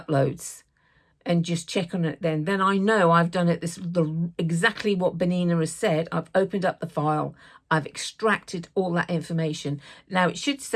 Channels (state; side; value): identical; both; correlation 1.00